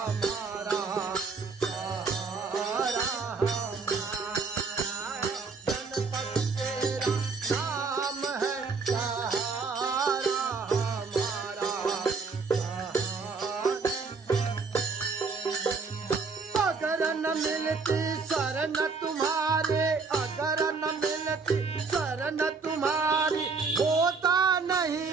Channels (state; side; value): quieter; left; 4.7 dB